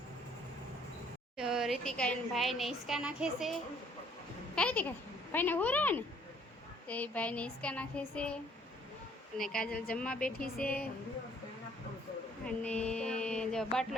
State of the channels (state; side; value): normal; both; correlation 0.61